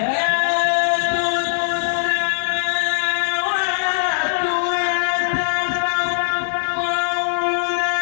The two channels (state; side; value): silent; right; 66 dB below the other